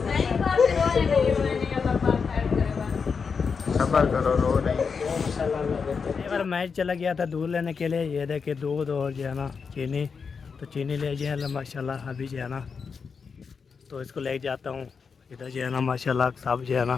सबर करो, रो नहीं। एक बार मैच चला गया था दूध लेने के लिए, ये देखे दूध और जो है ना चीनी, तो चीनी ले जो है माशाल्लाह अभी जो है ना, तो इसको ले जाता हूँ। इधर जो है ना माशाल्लाह सब जो है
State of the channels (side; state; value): right; quieter; 5.6 dB